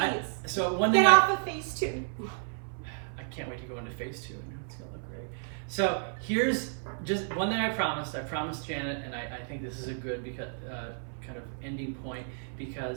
So one thing. Get off of phase 2. I can't wait to go into phase 2. It's gonna look great. So here's just one thing I promised. I promised Janet, and I think this is a good kind of ending point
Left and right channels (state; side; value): silent; left; 55 dB below the other